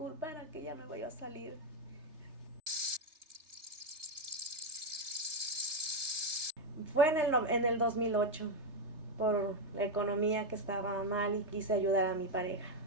que ya me voy a salir. Fue en el 2008, por la economía que estaba mal y quise ayudar a mi pareja.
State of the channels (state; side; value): late; left; 3.3 ms